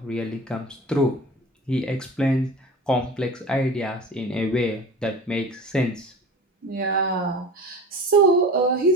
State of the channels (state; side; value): normal; both; correlation 0.36